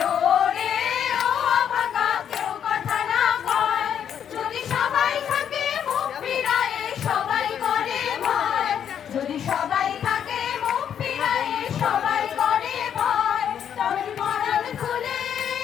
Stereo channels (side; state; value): right; quieter; 8.8 dB